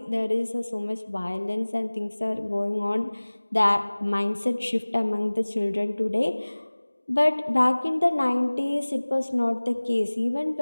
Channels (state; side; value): inverted; both; correlation -1.00